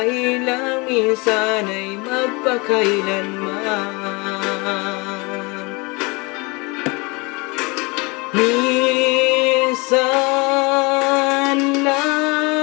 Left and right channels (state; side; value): quieter; right; 27.3 dB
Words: lang minsan ay magpakailanman. Minsan